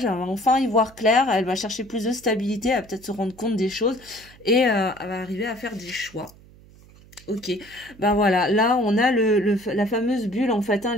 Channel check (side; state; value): right; noise; hum, 24 dB below the sound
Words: elle va enfin y voir clair, elle va chercher plus de stabilité, elle va peut-être se rendre compte des choses, et elle va arriver à faire des choix. Ok, ben voilà, là on a la fameuse bulle en fait, hein,